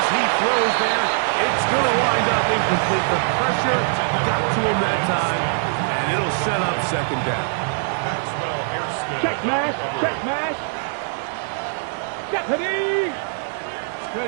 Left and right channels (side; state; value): left; silent; digital silence